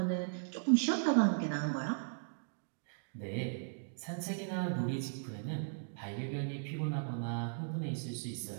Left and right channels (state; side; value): silent; left; digital silence